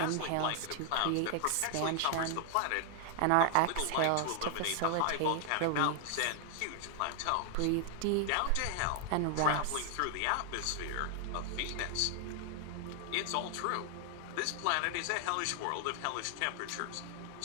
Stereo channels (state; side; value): different; both; correlation 0.00